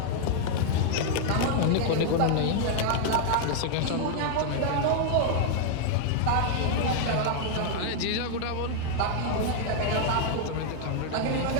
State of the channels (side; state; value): both; different; correlation 0.00